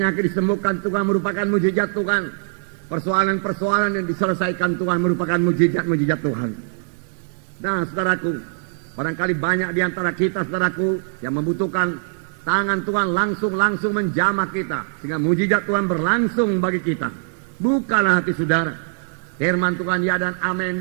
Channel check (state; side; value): silent; left; digital silence